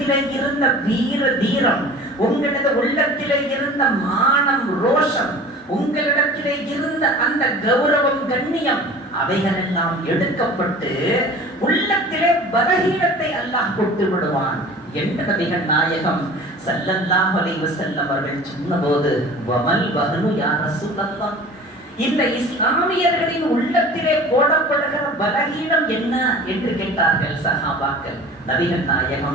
இருந்த வீர தீரம், உங்களது உள்ளத்திலே இருந்த மானம் ரோஷம், உங்களிடத்திலே இருந்த அந்த கௌரவம் கண்ணியம் அவைகளெல்லாம் எடுக்கப்பட்டு உள்ளத்திலே பலகீனத்தை அல்லாஹ் கொடுத்து விடுவான் என்று நபிகள் நாயகம் ஸல்லல்லாஹு அலைஹி வஸல்லம் அவர்கள் சொன்னபோது, வமல் வஹனு யா ரசூலல்லாஹ், இந்த இஸ்லாமியர்களின் உள்ளத்திலே போடப்படுகிற பலகீனம் என்ன என்று கேட்டார்கள் சஹாபாக்கள். நபிகள்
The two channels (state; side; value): normal; both; correlation 0.41